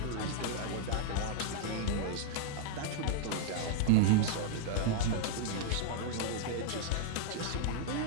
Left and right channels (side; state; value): both; different; correlation 0.00